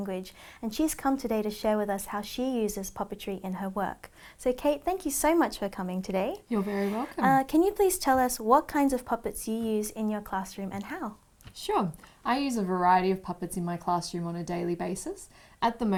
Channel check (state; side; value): identical; both; correlation 1.00